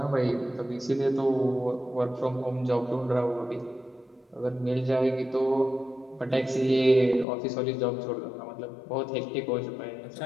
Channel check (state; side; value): drops out; right; at 7.2 s